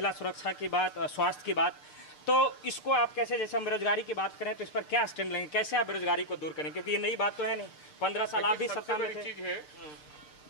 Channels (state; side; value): late; right; 6.7 ms